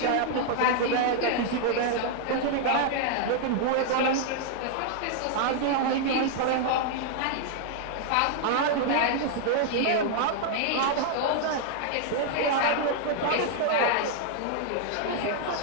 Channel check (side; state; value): both; different; correlation 0.00